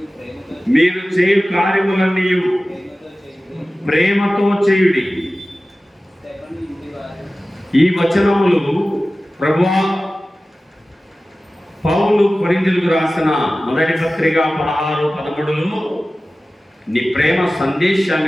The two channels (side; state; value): both; normal; correlation 0.96